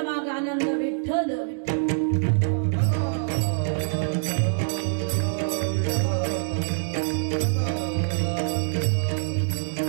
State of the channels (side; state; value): left; silent; digital silence